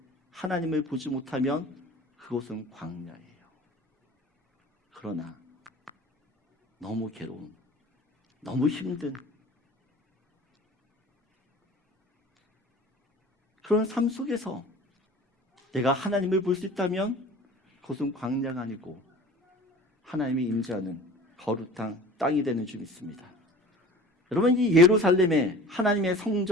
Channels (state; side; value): normal; both; correlation 0.42